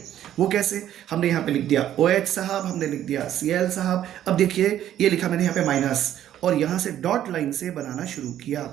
वो कैसे, हमने यहाँ पे लिख दिया OH साहब, हमने लिख दिया Cl साहब, अब देखिए ये लिखा मैंने यहाँ पे माइनस, और यहाँ से डॉट लाइन से बनाना शुरू किया।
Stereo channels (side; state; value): left; quieter; 11.5 dB